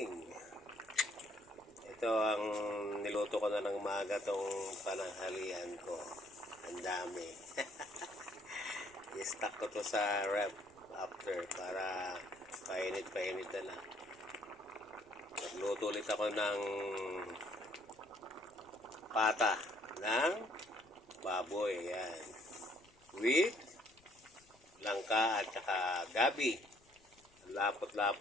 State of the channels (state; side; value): noise; left; rumble, 29 dB below the sound